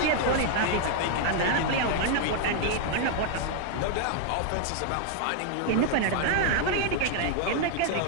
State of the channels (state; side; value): different; both; correlation 0.00